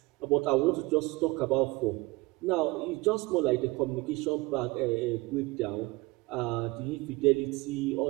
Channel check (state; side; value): quieter; left; 22.9 dB